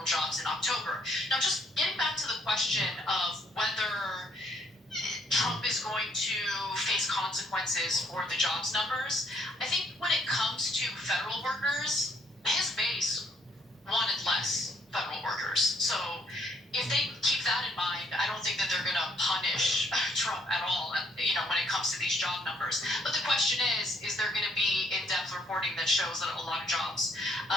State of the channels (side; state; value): both; normal; correlation 0.68